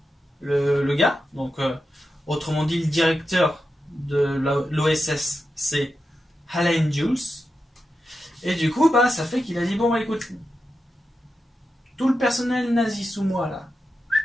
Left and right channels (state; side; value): normal; both; correlation 0.89